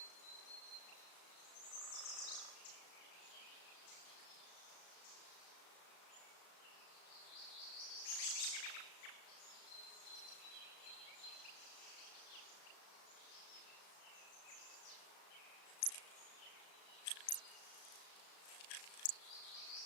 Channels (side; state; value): right; late; 35 ms